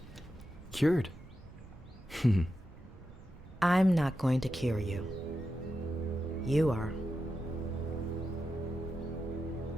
cured. I'm not going to cure you. You are.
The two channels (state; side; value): noise; right; rumble, 19 dB below the sound